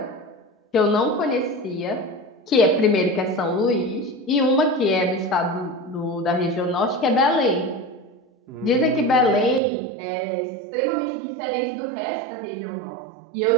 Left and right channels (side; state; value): left; drops out; at 9.6 s